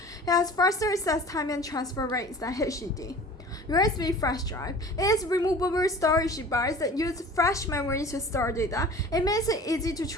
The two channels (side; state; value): both; normal; correlation 0.42